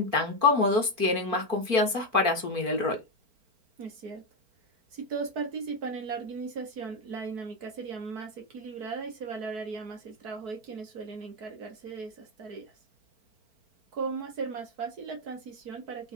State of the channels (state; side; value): late; left; 4.4 ms